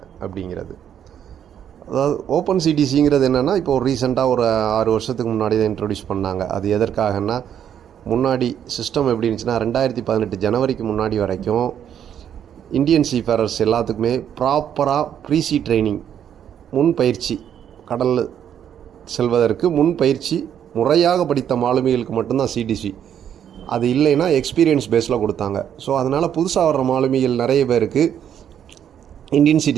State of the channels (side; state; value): left; quieter; 9.3 dB